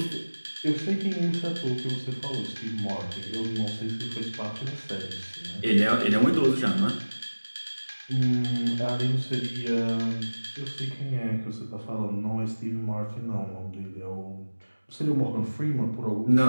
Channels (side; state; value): both; inverted; correlation -1.00